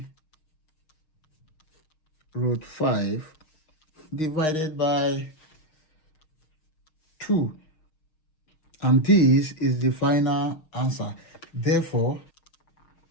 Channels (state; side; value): late; right; 6.4 ms